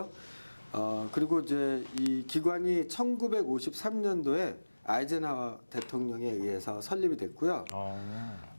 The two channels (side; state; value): both; inverted; correlation -1.00